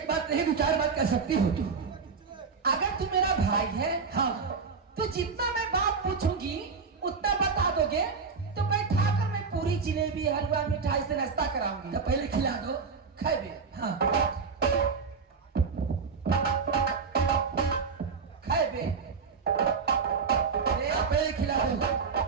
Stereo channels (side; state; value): left; quieter; 5.2 dB